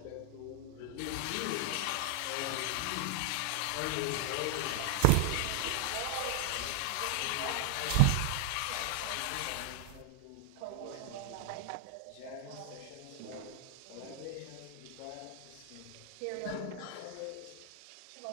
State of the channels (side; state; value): both; different; correlation 0.00